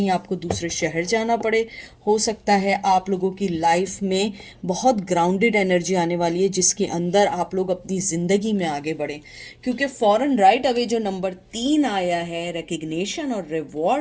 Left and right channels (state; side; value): identical; both; correlation 1.00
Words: आपको दूसरे शहर जाना पड़े। हो सकता है आप लोगों की लाइफ में बहुत ग्राउंडेड एनर्जी आने वाली है जिसके अंदर आप लोग अपनी ज़िंदगी में आगे बढ़ें। क्योंकि फॉरन राइट अवे जो नंबर 3 आया है रिकग्निशन और